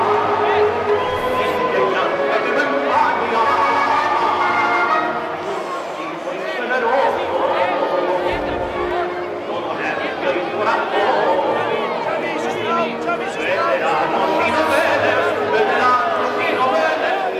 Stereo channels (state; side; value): identical; both; correlation 1.00